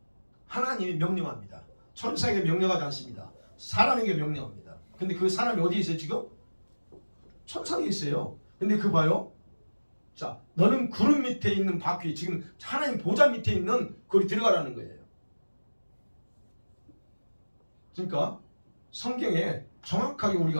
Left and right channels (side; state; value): both; inverted; correlation -1.00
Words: 하나님이 명령합니다. 천사에게 명령하지 않습니다. 사람에게 명령합니다. 근데 그 사람이 어디에 있어요 지금? 천상에 있어요. 근데 그 봐요. 자, 너는 구름 밑에 있는 바퀴, 지금 하나님 보좌 밑에 있는 거기 들어가라는 거예요. 그러니까 성경에 정확하게